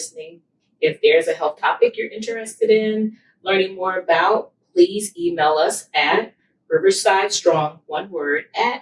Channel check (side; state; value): both; identical; correlation 1.00